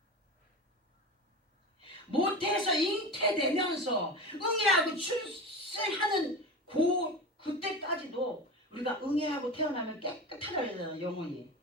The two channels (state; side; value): normal; both; correlation 0.28